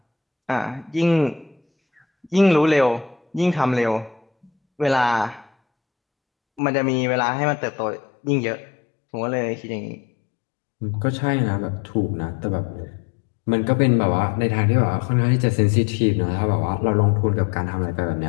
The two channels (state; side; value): drops out; right; at 6.6 s